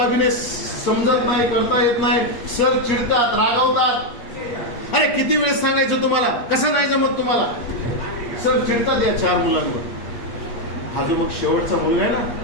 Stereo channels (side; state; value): right; late; 8.5 ms